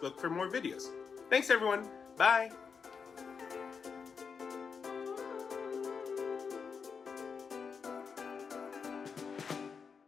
for more videos. Thanks everyone, bye!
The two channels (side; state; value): right; quieter; 5.8 dB